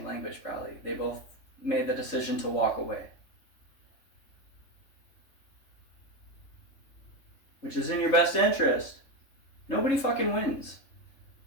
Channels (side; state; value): right; late; 3.3 ms